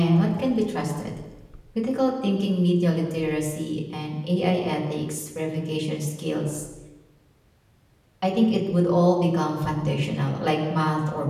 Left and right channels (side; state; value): both; identical; correlation 1.00